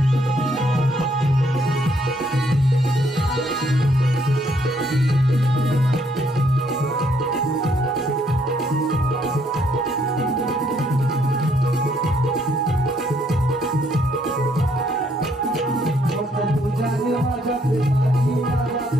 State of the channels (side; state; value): both; normal; correlation 0.69